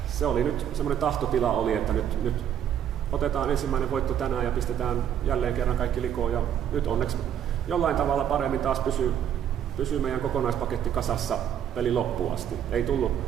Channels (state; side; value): quieter; left; 9.6 dB